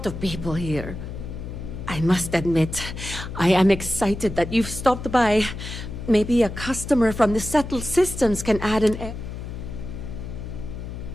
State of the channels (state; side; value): noise; left; hum, 8 dB below the sound